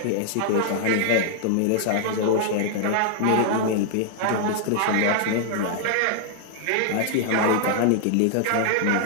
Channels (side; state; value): both; different; correlation -0.01